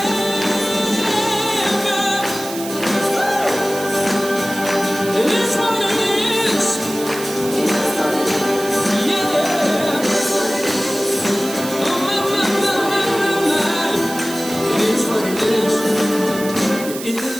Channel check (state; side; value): noise; right; hiss, 11 dB below the sound